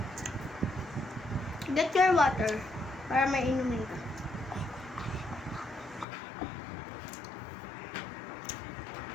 Get your water para may inumin ka.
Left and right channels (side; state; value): right; drops out; at 6.1 s